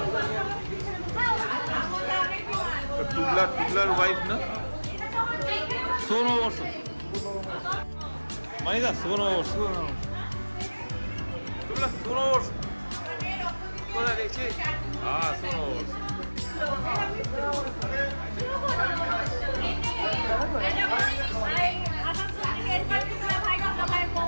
টুবলার ওয়াইফ না, শুভ নববর্ষ মানিদা, শুভ নববর্ষ, টুবলা শুভ নববর্ষ কোথায় দেখছি? হ্যাঁ শুভ নববর্ষ।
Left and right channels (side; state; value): both; inverted; correlation -1.00